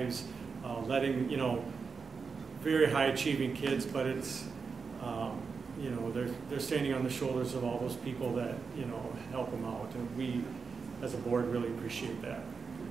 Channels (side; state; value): left; quieter; 5.2 dB